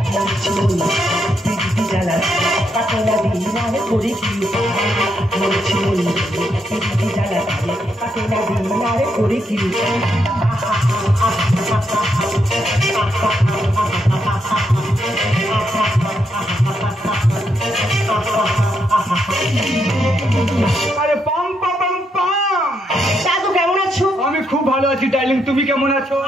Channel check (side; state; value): both; normal; correlation 0.79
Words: পিটি চালা কাকে না দিন আর করে কি পিটি চালা কাকে না দিন আর করে কি আরে পাম পাম পাম দাদু কেমন আছো? আমি খুব ভালো আছি ডার্লিং, তুমি কেমন আছো?